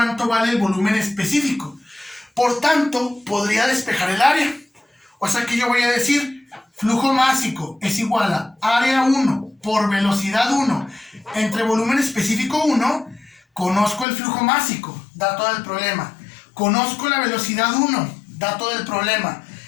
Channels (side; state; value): right; drops out; at 14.1 s